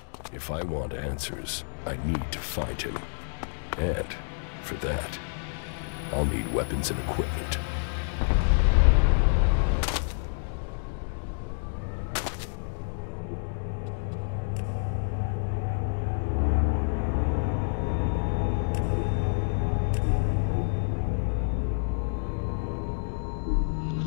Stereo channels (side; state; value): right; silent; digital silence